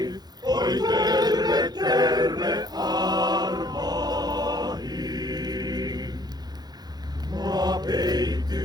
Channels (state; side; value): late; left; 0.19 ms